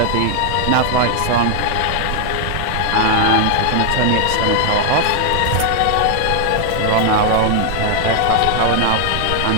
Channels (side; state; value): both; different; correlation 0.00